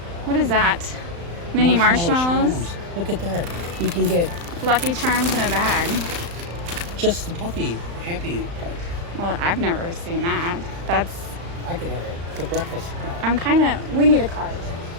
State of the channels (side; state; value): left; late; 35 ms